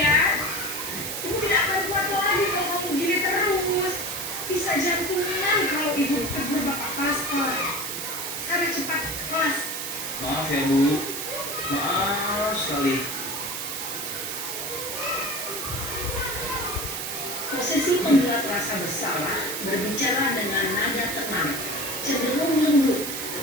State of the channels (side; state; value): right; noise; hiss, 4 dB below the sound